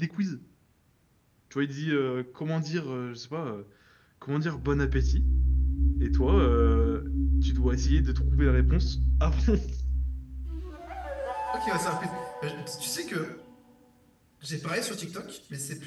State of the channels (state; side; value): identical; both; correlation 1.00